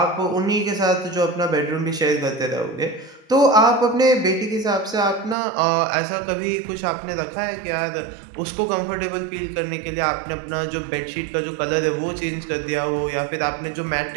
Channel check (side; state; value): left; drops out; at 5.4 s